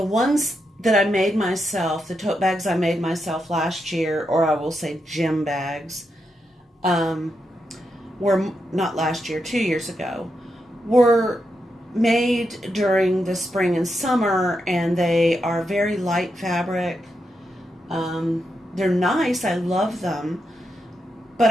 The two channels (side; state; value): both; normal; correlation 0.84